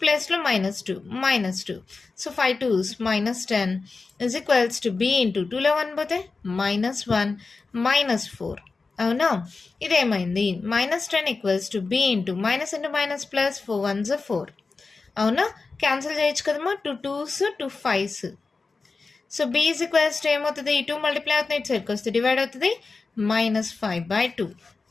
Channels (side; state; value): right; quieter; 4.1 dB